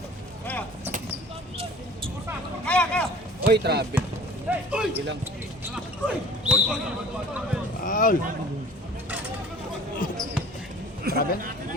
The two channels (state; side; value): normal; both; correlation 0.47